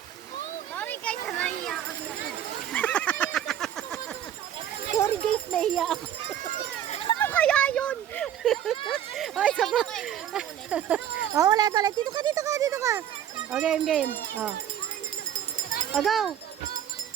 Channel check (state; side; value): quieter; left; 10.4 dB